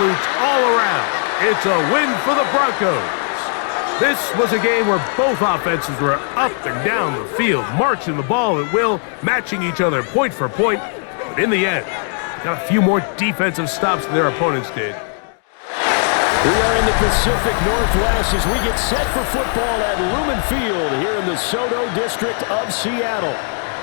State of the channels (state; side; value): silent; right; 55 dB below the other